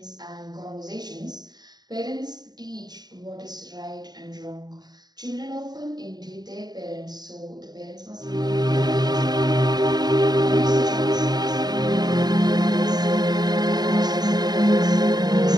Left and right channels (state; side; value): late; left; 0.20 ms